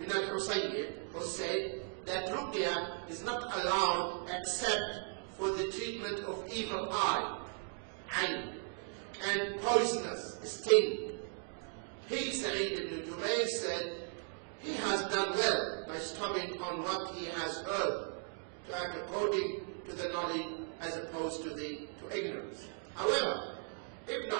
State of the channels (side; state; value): left; silent; 53 dB below the other